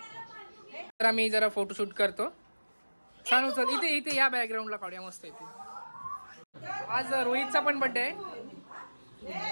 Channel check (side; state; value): both; inverted; correlation -1.00